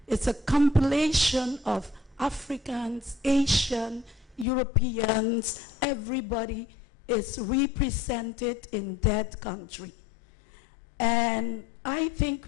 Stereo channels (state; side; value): drops out; right; at 4.5 s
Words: It's a compilation of Africans, Asian, Europeans, everybody is represented in that country. And I think